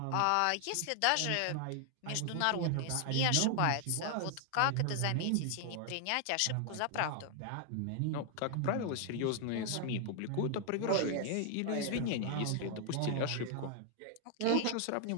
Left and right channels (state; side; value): different; both; correlation 0.00